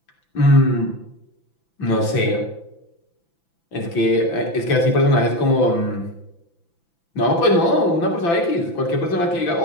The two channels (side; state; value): right; late; 5.9 ms